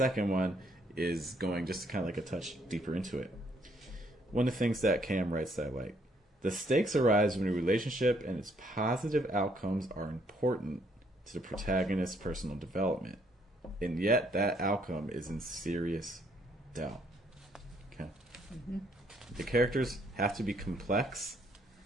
one is going just kind of like a touch deeper into it. One of the things that Cam writes that I like: the stakes arise when a relationship and its positive outcomes are important to the protagonist's personal development, and yet that outcome is in serious doubt. Okay. The characters have to be complex,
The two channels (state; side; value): normal; both; correlation 0.69